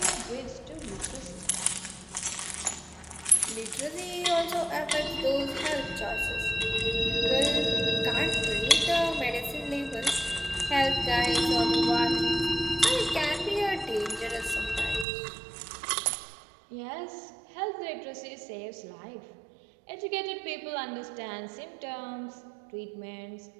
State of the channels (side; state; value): left; drops out; at 15.1 s